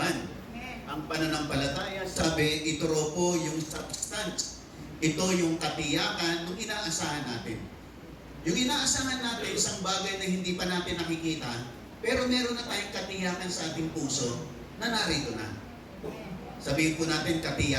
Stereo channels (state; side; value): identical; both; correlation 1.00